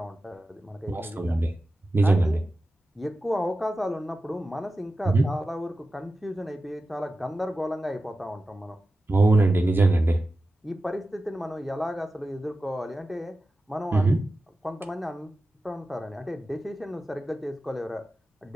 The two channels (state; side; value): normal; both; correlation 0.93